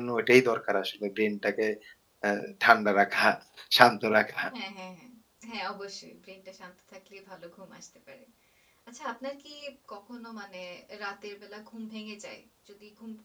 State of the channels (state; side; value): identical; both; correlation 1.00